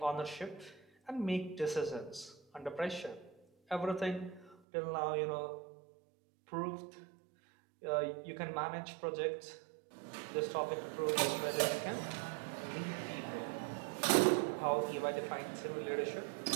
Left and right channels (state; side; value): drops out; left; at 4.5 s